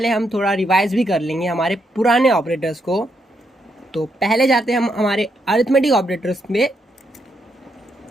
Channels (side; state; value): both; normal; correlation 0.79